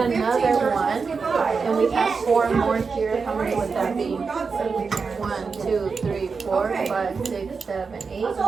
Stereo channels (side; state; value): left; quieter; 5.0 dB